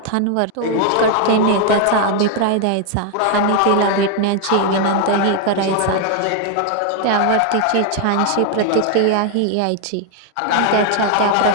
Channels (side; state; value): both; different; correlation 0.01